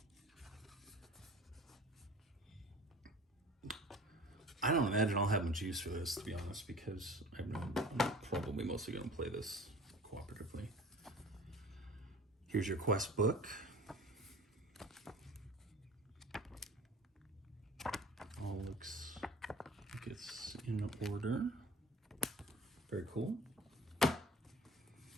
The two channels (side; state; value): both; normal; correlation 0.43